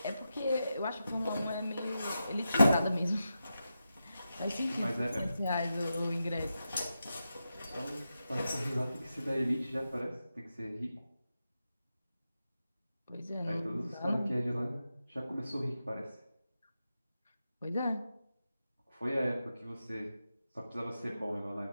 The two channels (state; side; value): inverted; both; correlation -0.90